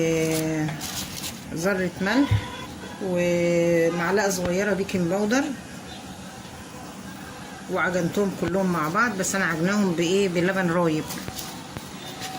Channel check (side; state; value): both; identical; correlation 1.00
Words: ذره ملح، ومعلقه صغيره بيكنج باودر، وعجنتهم كلهم مع بعض، بس انا عجناهم بايه؟ بلبن رايب